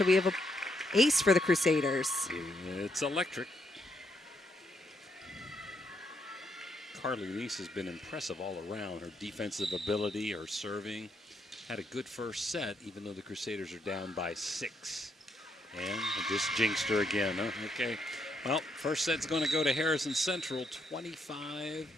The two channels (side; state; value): both; normal; correlation 0.76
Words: we have an ace for the Crusaders. It's electric. Carly Neese has been impressive all around. Her defensive ability, her serving. Had a good first set, even though the Crusaders are down by 6. And just jinxed her again. Huh? Okay. Well, first set's going to go to Harrison Central, 25-18